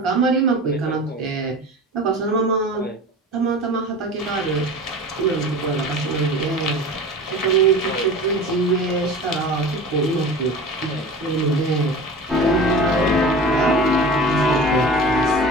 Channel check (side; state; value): both; normal; correlation 0.36